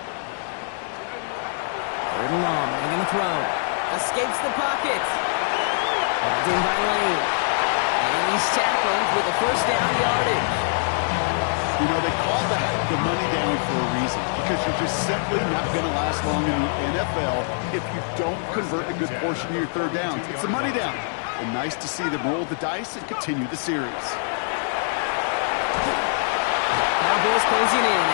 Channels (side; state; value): right; silent; digital silence